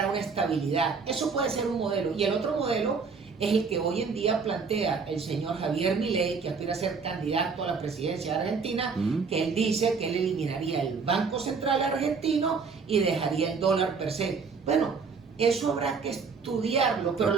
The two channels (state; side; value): quieter; left; 5.2 dB